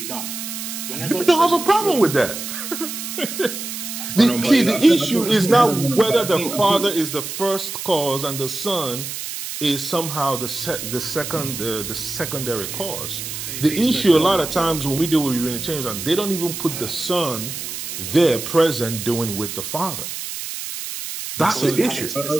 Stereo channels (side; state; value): right; noise; hiss, 7 dB below the sound